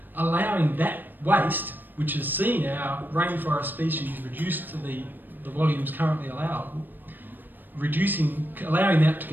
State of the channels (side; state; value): left; late; 0.091 ms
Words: allowing that waste, which has seen our rainforest species reduced to the volumes currently allowable, allowing that to